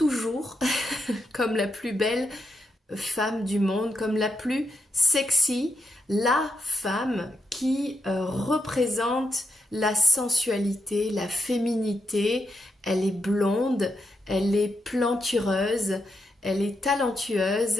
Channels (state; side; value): normal; both; correlation 0.82